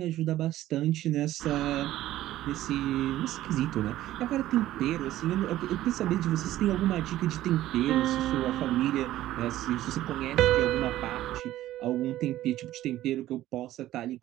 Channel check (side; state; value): left; quieter; 14.4 dB